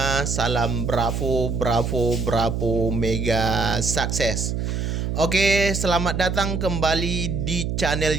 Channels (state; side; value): noise; right; hum, 1 dB below the sound